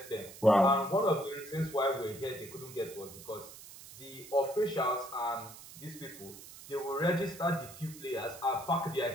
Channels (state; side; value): noise; right; hiss, 16 dB below the sound